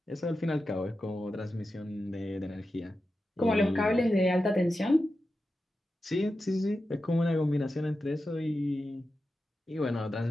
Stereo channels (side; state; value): both; normal; correlation 0.91